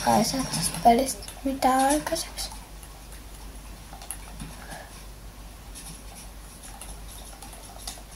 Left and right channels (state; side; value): identical; both; correlation 1.00